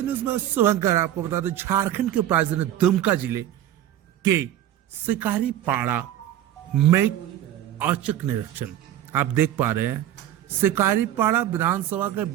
न्यूज में शुभंकर। आपको बता दें, झारखंड के राजधानी दुमका जिले के शिकारी पाड़ा में औचक निरीक्षण आप देख पा रहे हैं। शिकारी पाड़ा विधानसभा के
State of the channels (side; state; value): left; quieter; 11.9 dB